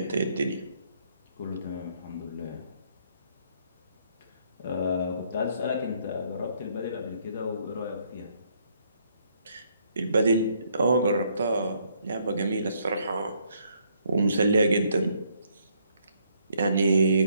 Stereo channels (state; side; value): inverted; both; correlation -0.69